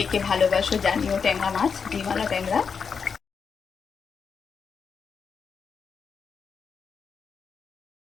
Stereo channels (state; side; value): quieter; right; 6.0 dB